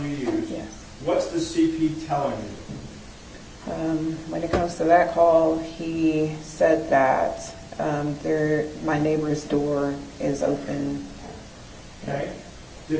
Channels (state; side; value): identical; both; correlation 1.00